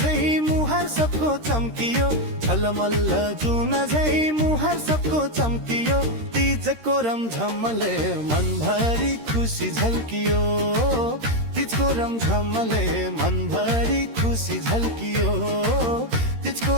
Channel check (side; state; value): left; late; 13 ms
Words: मुहार सबको चम्कियो, छलमल्ल जुन झै मुहार सबको चम्कियो, तीजको रमझमले मनभरि खुसी झल्कियो, तीजको रमझमले मनभरि खुसी झल्कियो, तीजको